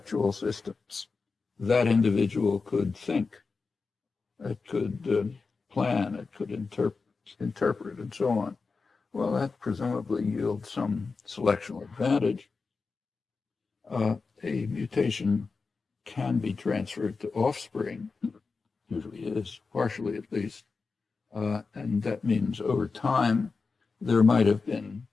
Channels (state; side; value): quieter; right; 4.5 dB